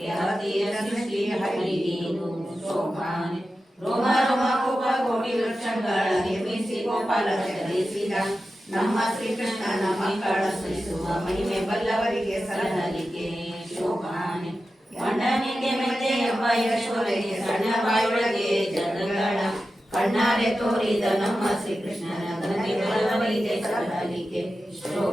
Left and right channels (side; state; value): both; normal; correlation 0.92